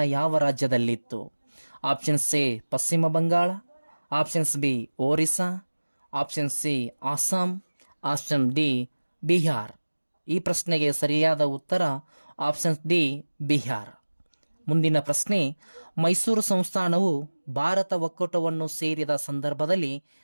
ಯಾವ ರಾಜ್ಯದಲ್ಲಿತ್ತು? Options A Paschima Bangala. Options B Orissa. Option C Assam. Option D Bihar. ಈ ಪ್ರಶ್ನೆಗೆ ಸರಿಯಾದ ಉತ್ತರ ಆಪ್ಷನ್ ಡಿ ಬಿಹಾರ್. ಮುಂದಿನ ಪ್ರಶ್ನೆ, ಮೈಸೂರು ಸಂಸ್ಥಾನವು ಭಾರತ ಒಕ್ಕೂಟವನ್ನು ಸೇರಿದ ಸಂದರ್ಭದಲ್ಲಿ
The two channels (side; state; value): both; inverted; correlation -1.00